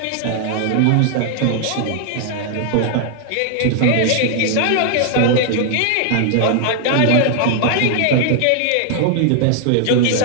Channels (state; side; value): different; both; correlation 0.00